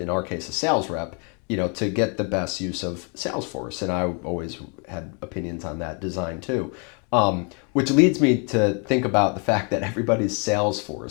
in our case, a sales rep, to get the best use of Salesforce. And I always had opinions on that design too. Which leads me to think about the fact that everybody's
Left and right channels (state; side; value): quieter; right; 36.3 dB